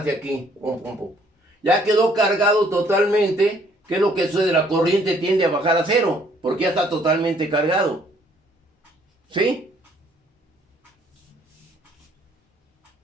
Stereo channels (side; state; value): both; normal; correlation 0.63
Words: aquí. Pum, pum, pum. Ya quedó cargado totalmente. ¿Qué es lo que sucede? La corriente tiende a bajar a cero, porque ya está totalmente cargado. ¿Sí?